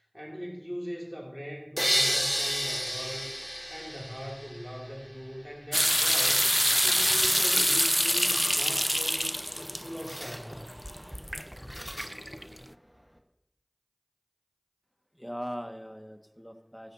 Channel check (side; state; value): both; identical; correlation 1.00